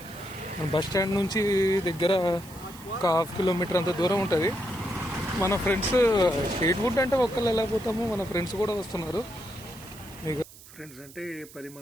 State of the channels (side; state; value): right; noise; hiss, 20 dB below the sound